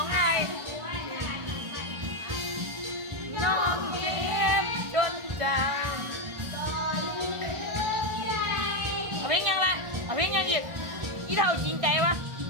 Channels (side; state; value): left; late; 1.4 ms